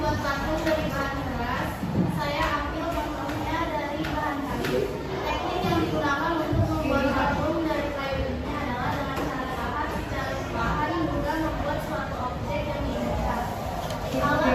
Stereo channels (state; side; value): identical; both; correlation 1.00